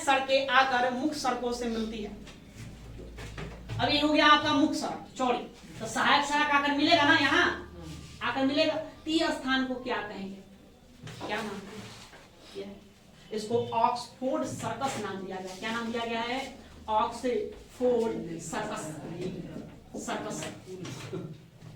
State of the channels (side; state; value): both; identical; correlation 1.00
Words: सड़कें आकर मुख्य सड़कों से मिलती है। अब ये हो गया आपका मुख्य सड़क चौड़ी, तो सहायक सड़क आकर मिलेगा ना, यहाँ आकर मिलेगा। ती स्थान को क्या कहेंगे, क्या नाम है? इसको ऑक्सफोर्ड सर्कस नाम दिया गया। क्या नाम दिया गया है, ऑक्सफोर्ड सर्कस। सर्कस,